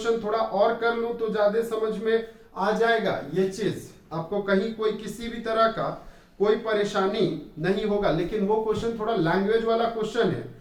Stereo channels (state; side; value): identical; both; correlation 1.00